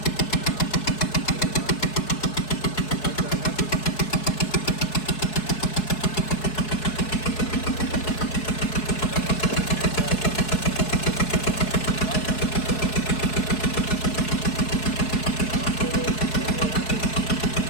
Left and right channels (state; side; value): late; right; 4.7 ms